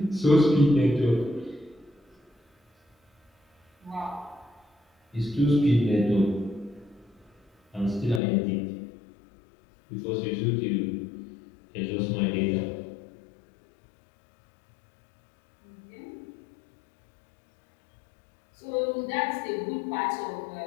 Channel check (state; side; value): drops out; right; at 8.2 s